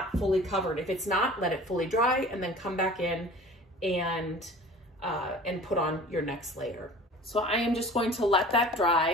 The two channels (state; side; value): normal; both; correlation 0.43